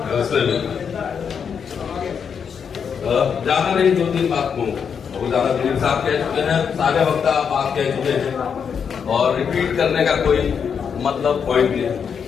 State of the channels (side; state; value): right; quieter; 6.9 dB